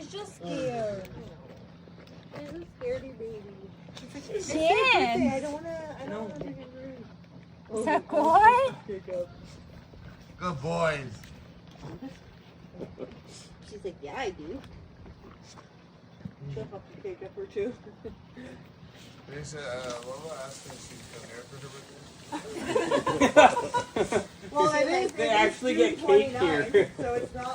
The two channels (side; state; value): both; identical; correlation 1.00